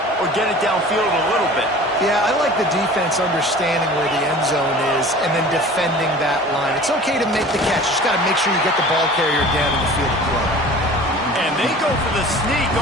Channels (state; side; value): normal; both; correlation 0.42